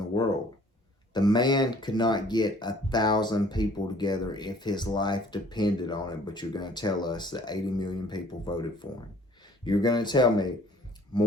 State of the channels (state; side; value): normal; both; correlation 0.55